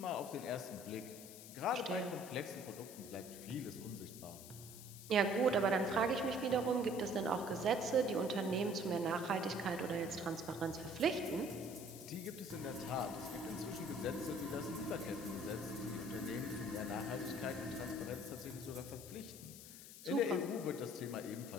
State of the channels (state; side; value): noise; left; hiss, 14 dB below the sound